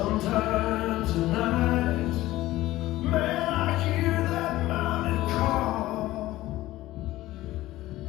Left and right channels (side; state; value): right; quieter; 16.5 dB